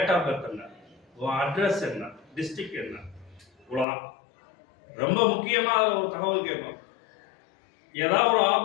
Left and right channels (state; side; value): drops out; right; at 3.9 s